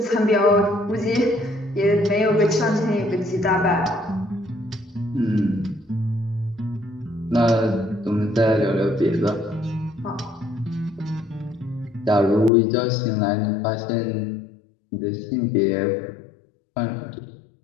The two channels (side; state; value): right; drops out; at 12.5 s